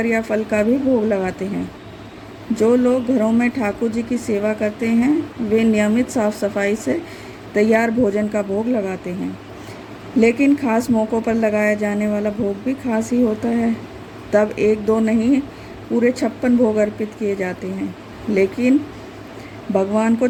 या फल का भी भोग लगाते हैं। जो लोग घरों में ठाकुर जी की सेवा करते हैं वे नियमित साफ सफाई से तैयार भोजन का भोग लगाते हैं। लेकिन खास मौक़ों पर लगाया जाने वाला भोग भी खास ही होता है। तब एक दो नहीं, पूरे 56 भोग अर्पित किए जाते हैं। लेकिन भगवान को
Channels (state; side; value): identical; both; correlation 1.00